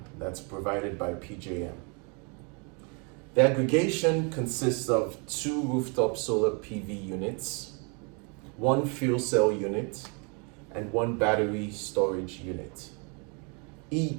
that's provided by PJM. The aggregation consists of 2 rooftop solar PV units, 1 fuel cell unit, and 1 battery storage unit,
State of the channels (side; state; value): left; quieter; 34.4 dB